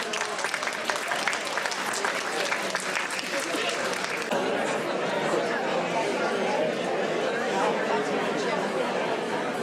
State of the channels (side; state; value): both; identical; correlation 1.00